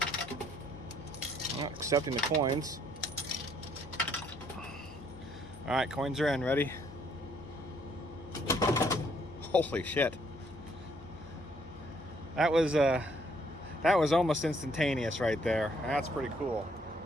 Accepting the coins. All right, coins are in. Ready? Holy shit! That was almost instantaneous right there. That's pretty cool.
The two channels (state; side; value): noise; left; hum, 22 dB below the sound